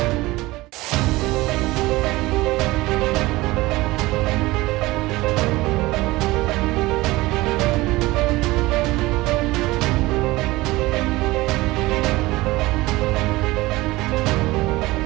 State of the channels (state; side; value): quieter; left; 20.0 dB